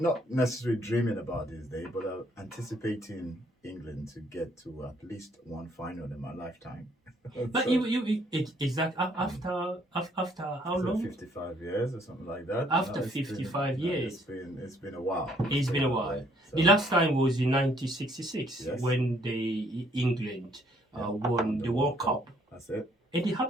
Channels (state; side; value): normal; both; correlation 0.65